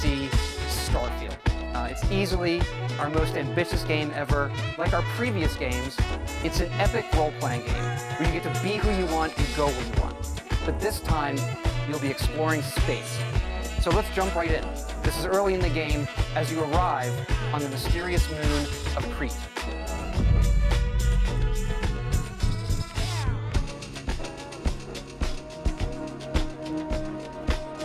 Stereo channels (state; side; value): identical; both; correlation 1.00